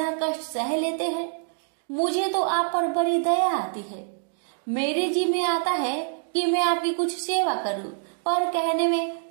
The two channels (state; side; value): silent; left; digital silence